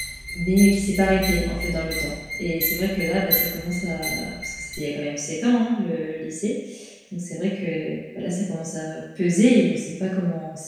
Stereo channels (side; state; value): both; identical; correlation 1.00